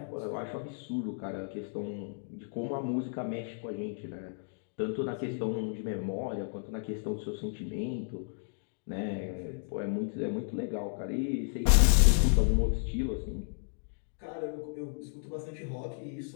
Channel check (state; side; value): silent; right; digital silence